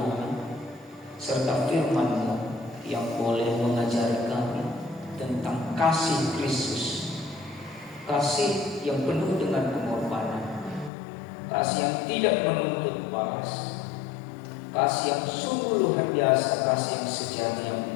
serta firman-Mu yang boleh mengajari kami tentang kasih Kristus, kasih yang penuh dengan pengorbanan, kasih yang tidak menuntut balas, kasih yang sungguh luar biasa, kasih yang sejati, yang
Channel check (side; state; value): right; drops out; at 10.9 s